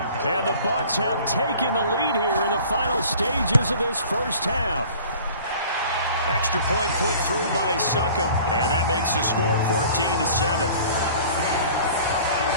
And the Bucs have taken the lead here in the final stages of this first half. Extra point put through by Succop, and that makes the score 14-7.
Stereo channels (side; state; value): both; inverted; correlation -0.47